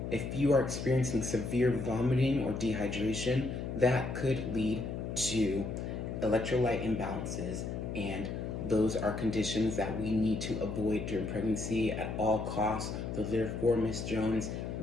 If you are experiencing severe vomiting or dehydration, that could lead to electrolyte imbalances, and those are conditions that we need to avoid during pregnancy at all costs. So therefore, Ms. Jones,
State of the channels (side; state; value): left; noise; hum, 5 dB below the sound